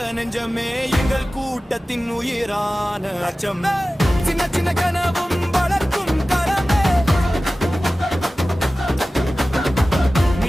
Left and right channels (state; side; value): normal; both; correlation 0.96